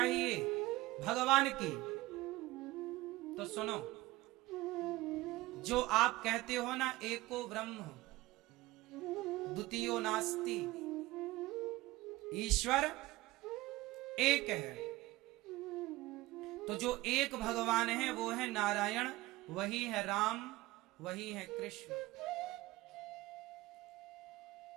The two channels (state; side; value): quieter; left; 19.0 dB